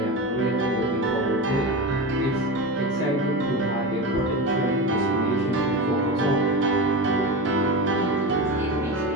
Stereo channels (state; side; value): normal; both; correlation 0.23